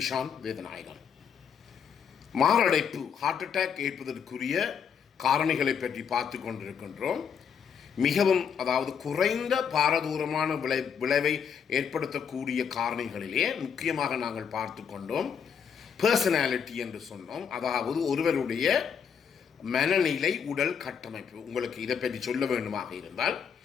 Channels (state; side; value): quieter; right; 7.2 dB